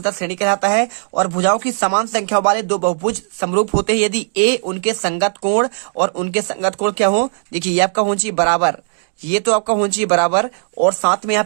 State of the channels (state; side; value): silent; left; digital silence